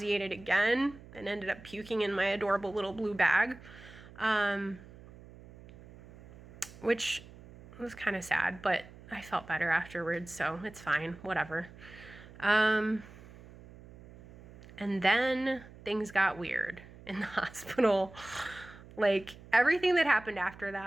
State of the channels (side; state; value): right; noise; hum, 19 dB below the sound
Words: again and ended up puking in my adorable little blue bag, which was kind of sad, but I felt better afterwards, so it's fine, whatever. And then things got weird in the hospital. Like, everything that happened after